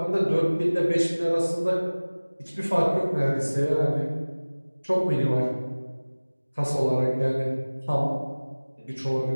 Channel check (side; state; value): both; inverted; correlation -1.00